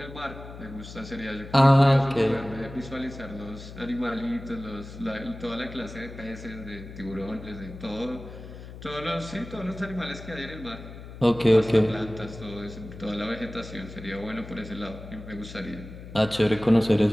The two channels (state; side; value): noise; left; hum, 13 dB below the sound